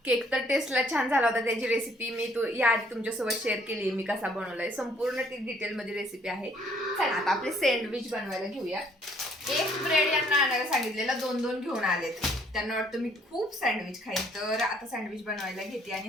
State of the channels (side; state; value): both; normal; correlation 0.63